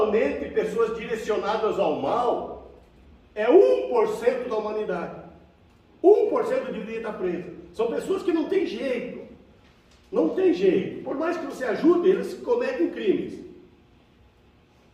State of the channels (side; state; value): both; identical; correlation 1.00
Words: pessoas direcionadas ao mal é 1% da humanidade. 1% deveria estar preso. São pessoas que não tem jeito. Não tem jeito. Por mais que você ajude, eles cometem crimes.